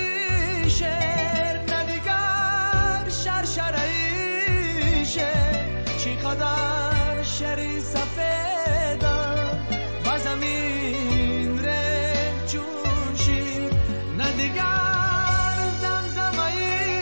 شعر، نه دیگر شرشره شعر. چقدر شعری سفیدم و زمین ره چون شیر، نه دیگر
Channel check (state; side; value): inverted; both; correlation -1.00